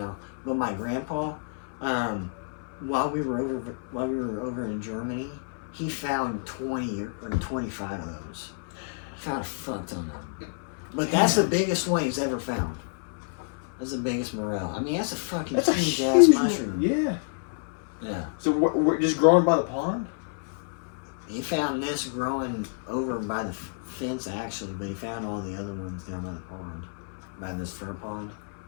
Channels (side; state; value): right; silent; 59 dB below the other